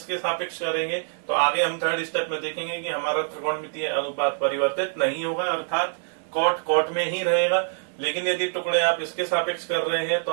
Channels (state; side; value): silent; left; digital silence